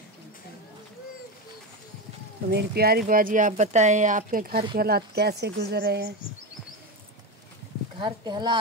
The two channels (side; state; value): both; normal; correlation 0.16